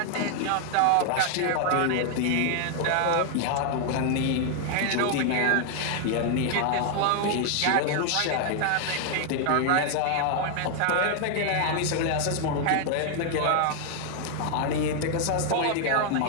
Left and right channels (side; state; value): both; different; correlation 0.00